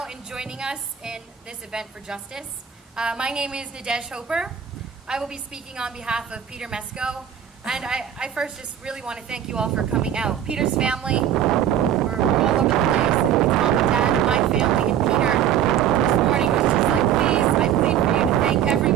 and joining us in this event for justice. My name is Nadege Hoeper. I will be speaking on behalf of Peter Mesko. And I first just really want to thank you all for coming out. Peter's family, we're all over the place. It's mom and dad and my family. And Peter this morning was just like, please, I plead for you to thank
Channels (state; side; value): quieter; left; 9.7 dB